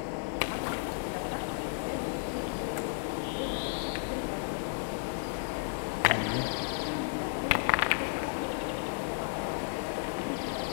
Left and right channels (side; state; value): right; silent; digital silence